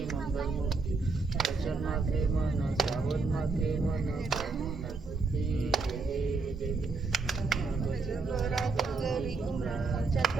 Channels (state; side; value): quieter; left; 4.0 dB